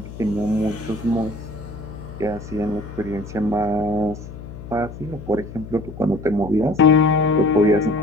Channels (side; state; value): left; noise; hum, 13 dB below the sound